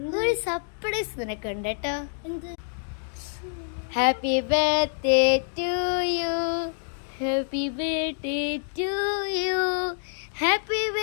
സർപ്രൈസ് നിനക്കുണ്ട് കേട്ടോ. എന്ത്? Happy birthday to you, happy birthday to you, happy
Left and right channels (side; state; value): right; silent; digital silence